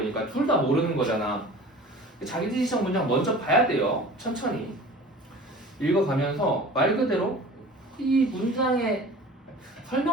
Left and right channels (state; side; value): normal; both; correlation 0.41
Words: 둘 다 모르는 거잖아. 자기지시적 문장 먼저 봐야 돼요. 천천히 읽어가면서 말 그대로 이 문장의